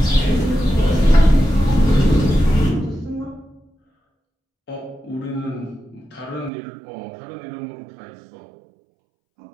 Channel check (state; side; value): drops out; left; at 6.5 s